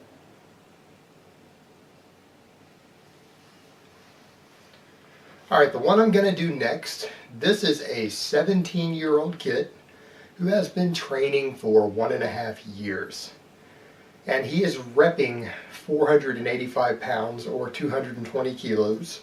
Alright, the one I'm going to do next, this is a 17-year-old kid who has been training for 1.5 years. And he is repping 485 pounds or 220 kilos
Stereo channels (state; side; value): identical; both; correlation 1.00